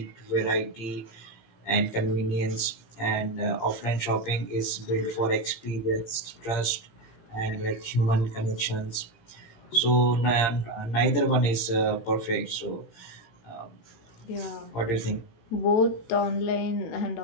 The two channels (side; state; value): right; late; 17 ms